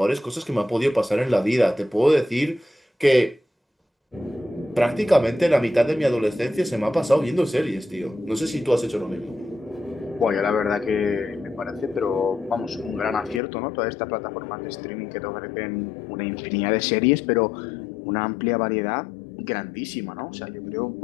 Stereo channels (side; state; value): right; drops out; at 13.4 s